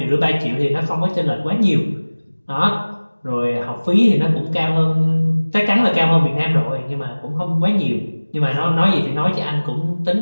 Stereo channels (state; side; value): inverted; both; correlation -1.00